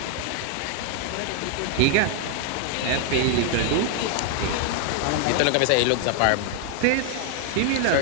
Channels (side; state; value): both; different; correlation 0.00